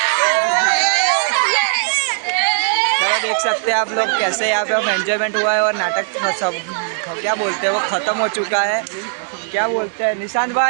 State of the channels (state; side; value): silent; left; digital silence